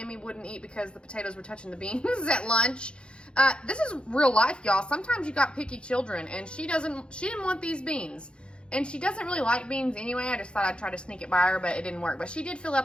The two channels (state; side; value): late; right; 0.055 ms